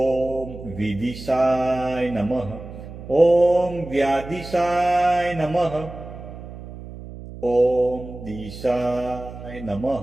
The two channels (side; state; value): right; noise; hum, 13 dB below the sound